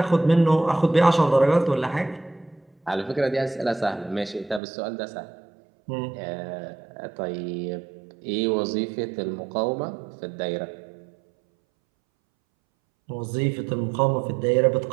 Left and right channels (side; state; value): left; drops out; at 4.6 s